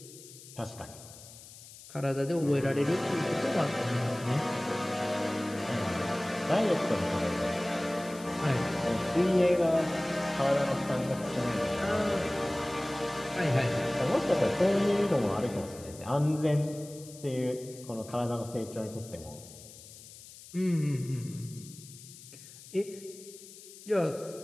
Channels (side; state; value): left; noise; hiss, 18 dB below the sound